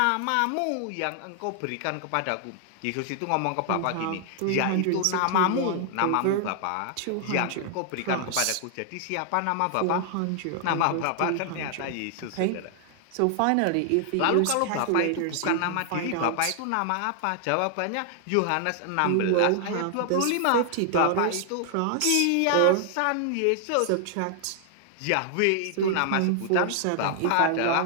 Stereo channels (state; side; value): different; both; correlation 0.00